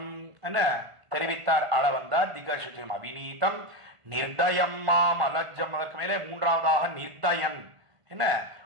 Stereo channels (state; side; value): late; left; 1.5 ms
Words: என்ன தெரிவித்தார் ஆள வந்தார் திகசுஜம். அவிநீதம் நிர்தயம் மாம் அலஜம். அதற்கு மேலே மூன்றாவதாக நிர்தயன், என்ன